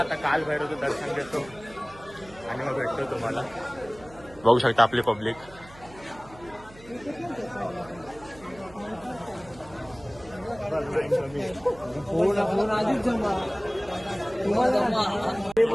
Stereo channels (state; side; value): noise; right; hum, 21 dB below the sound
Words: काल भैरवचं दर्शन घेतो आणि मग भेटतो तुम्हाला. बघू शकता आपली पब्लिक.